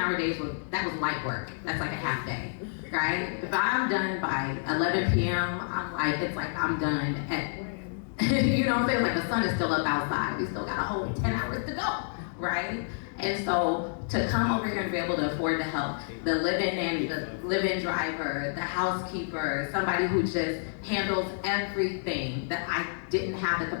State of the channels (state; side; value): silent; right; digital silence